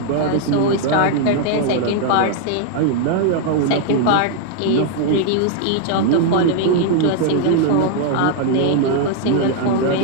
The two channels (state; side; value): different; both; correlation 0.00